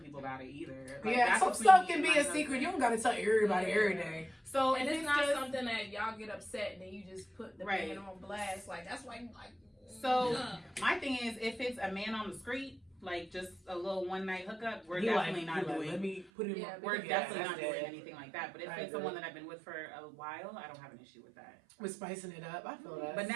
people about it either. Like, Yeah, that's some between stuff me can and be my a husband. secret. You don't gotta tell everybody every day. So And if it's not just, something that y'all get upset and then you just put the Right. man on blast. Like, that's why you like. So my thing is, if it's a man on the street, like just a little one night hookup, we're definitely not doing. Let me put it in Yeah, my. We're because definitely that's not doing it. anything like that. But if I it's agree. someone that I've been with for a while, I don't have an issue with that. We're spicing it up. I feel that. But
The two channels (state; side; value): drops out; left; at 16.3 s